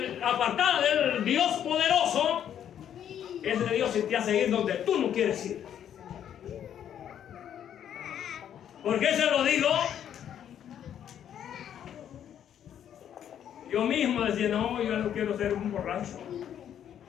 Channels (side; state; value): right; quieter; 9.7 dB